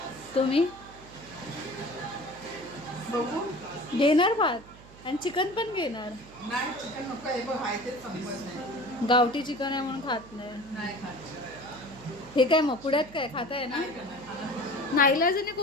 तुम्ही बघू. घेणार भात आणि चिकन पण घेणार. नाही चिकन नको, हे बघ आहे तेच संपत नाही. गावठी चिकन आहे म्हणून खात नाही. नाही खात. हे काय मग पुण्यात काय खाताय ना? नाईलाजाने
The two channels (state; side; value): noise; right; hum, 20 dB below the sound